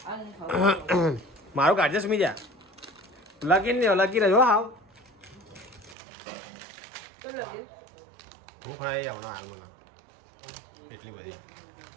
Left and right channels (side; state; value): left; drops out; at 6.0 s